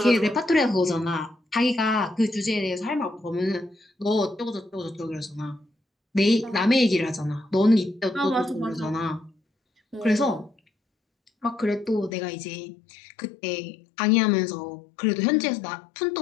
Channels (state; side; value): drops out; right; at 12.1 s